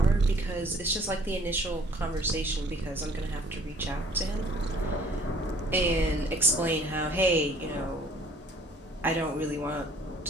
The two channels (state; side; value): normal; both; correlation 0.56